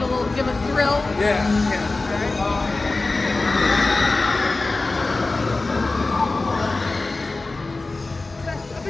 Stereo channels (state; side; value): quieter; right; 3.4 dB